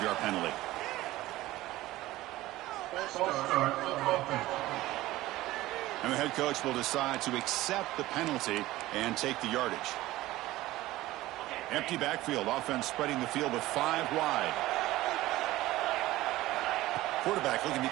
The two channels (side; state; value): left; quieter; 16.9 dB